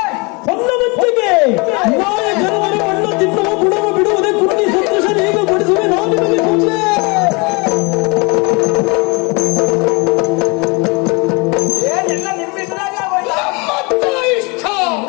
ಹೊನ್ನವತ್ತಿಗೆ ನಾಯ ಜನವರ ಮಣ್ಣು ತಿನ್ನುವ ಗುಣವ ಬಿಡುವುದೇ ಕುಟ್ಟಿ ಸಂತೋಷ ಈಗ ಬಡಿಸುವೆ ನಾವು ನಿಮಗೆ ಮುಂದೆ. ಏನೆಲ್ಲ ನಿಮ್ಮಿದ್ರಾಗ ನಮ್ಮತ್ತ ಇಷ್ಟ,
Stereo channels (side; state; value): right; quieter; 29.1 dB